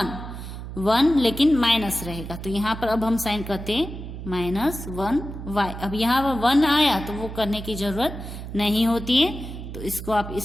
1 लेकिन माइनस रहेगा। तो यहाँ पर अब हम साइन करते हैं -1y। अब यहाँ पर 1 आया तो वो करने की जरूरत नहीं होती है, तो इसको आप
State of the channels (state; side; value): noise; right; hum, 9 dB below the sound